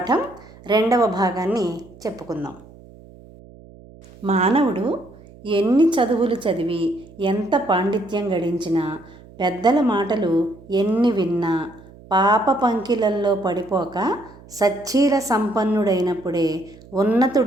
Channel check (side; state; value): right; noise; hum, 22 dB below the sound